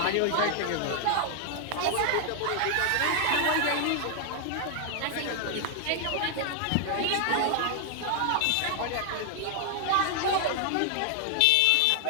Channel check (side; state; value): both; different; correlation 0.00